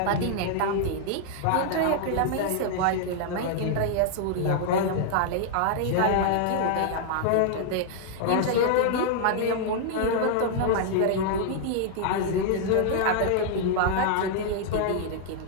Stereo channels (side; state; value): both; different; correlation -0.01